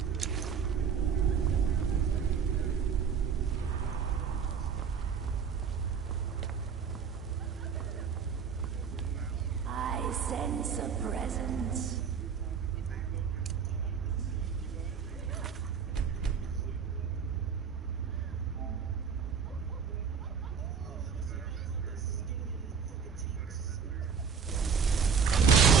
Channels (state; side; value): quieter; left; 6.5 dB